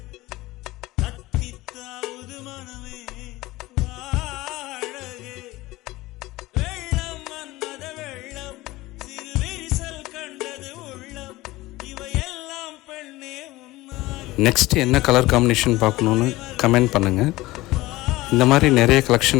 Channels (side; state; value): right; quieter; 18.9 dB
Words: நெக்ஸ்ட் என்ன கலர் காம்பினேஷன் பார்க்கணுன்னு கமெண்ட் பண்ணுங்கள். இந்த மாதிரி நிறைய